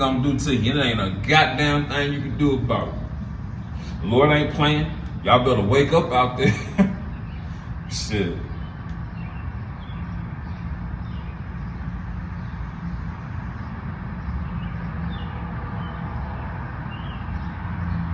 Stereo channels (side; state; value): both; identical; correlation 1.00